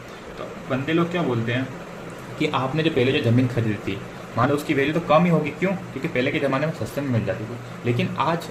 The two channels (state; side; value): identical; both; correlation 1.00